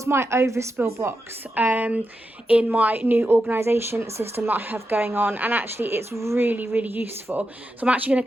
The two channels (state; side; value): normal; both; correlation 0.87